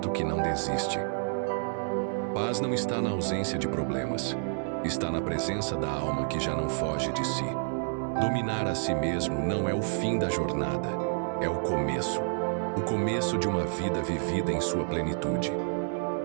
que não desiste. Paz não está na ausência de problemas, está na presença da alma que já não foge de si. Dominar a si mesmo não é o fim da jornada, é o começo de uma vida vivida em sua plenitude.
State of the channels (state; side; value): silent; left; 57 dB below the other